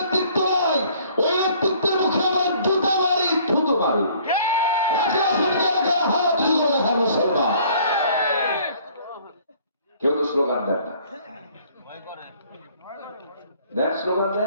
নাই, ওই নেতৃত্বের মুখে আমার জুতা মারি, স্লোগান দেন না, দেন স্লোগান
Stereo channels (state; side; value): inverted; both; correlation -0.57